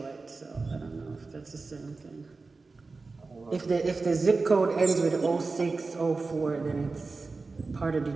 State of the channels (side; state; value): left; quieter; 3.9 dB